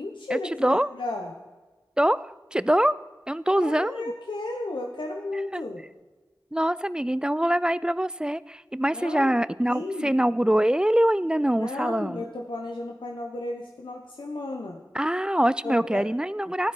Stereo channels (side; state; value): both; normal; correlation 0.96